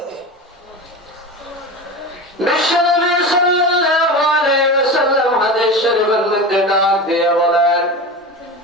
বিশ্বনবী সাল্লাল্লাহু আলাইহি ওয়াসাল্লাম হাদিস শরীফের মধ্যে ডাক দিয়ে বলেন,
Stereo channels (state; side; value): normal; both; correlation 0.27